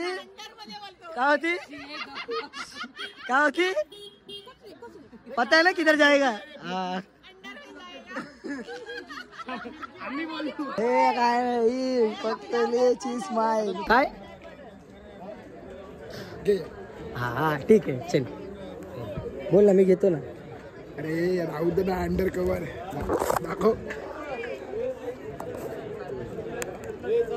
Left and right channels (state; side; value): identical; both; correlation 1.00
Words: पता है ना किधर जाएगा. हे काय फक्त स्माइल काय. हा ठीक आहे चल बोल ना मी घेतो ना. अरे राहू दे ना अंडर कवर दाखव.